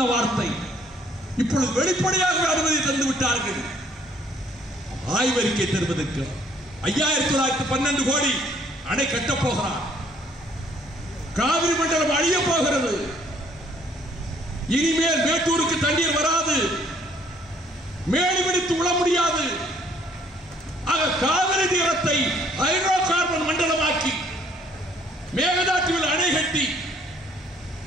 வார்த்தை இப்பொழுது வெளிப்படையாக அனுமதி தந்து விட்டார்கள். ஆய்வறிக்கை தருவதற்கு 5912 கோடி அணை கட்டப் போகிறார். காவிரி மண்டலம் அழிய போகிறது. இனிமேல் மேட்டூருக்கு தண்ணீர் வராது, மேடி பிடித்து உள்ள முடியாது. ஆக காவிரி தீரத்தை ஹைட்ரோ கார்பன் மண்டலமாக்கி மேகதாட்டுவில் அணை கட்டி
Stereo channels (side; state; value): both; normal; correlation 0.63